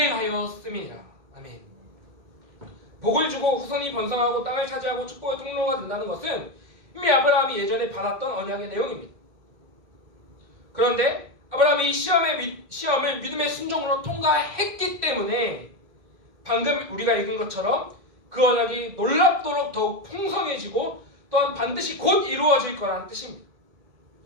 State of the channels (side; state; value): left; late; 2.1 ms